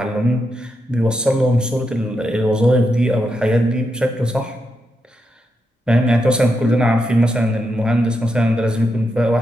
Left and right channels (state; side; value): normal; both; correlation 0.84